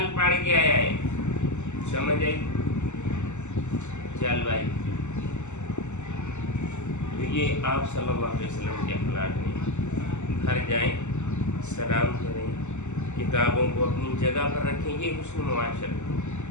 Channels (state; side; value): late; right; 0.84 ms